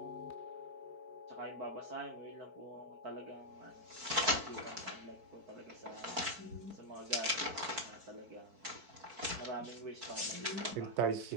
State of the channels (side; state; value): left; late; 4.5 ms